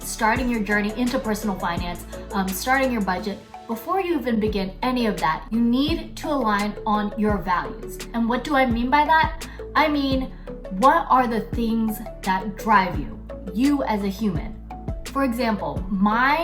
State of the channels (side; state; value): both; identical; correlation 1.00